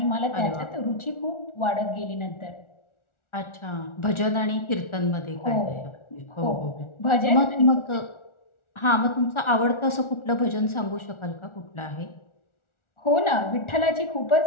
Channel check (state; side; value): late; right; 1.4 ms